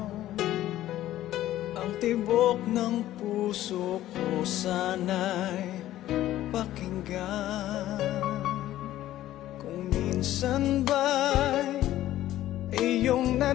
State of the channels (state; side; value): quieter; right; 13.9 dB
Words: Ang tibok ng puso ko sana'y pakinggan. Kung minsan ba'y iyong